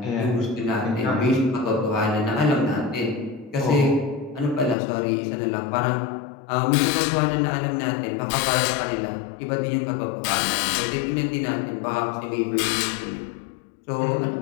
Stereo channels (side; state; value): right; drops out; at 4.8 s